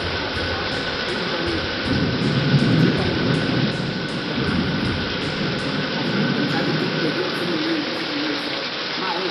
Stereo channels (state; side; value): identical; both; correlation 1.00